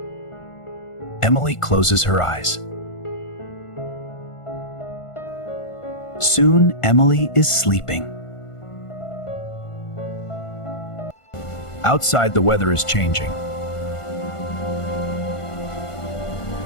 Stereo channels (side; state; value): right; late; 1.5 ms